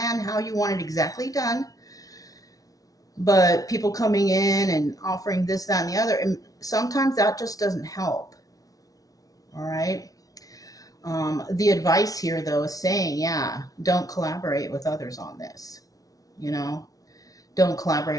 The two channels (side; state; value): right; late; 0.18 ms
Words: how you want it exactly done, but people coming in and offering this, that, and the other, and sometimes that just doesn't help. All right. The advice here, though, is saying, yeah, don't collaborate with others on this. Don't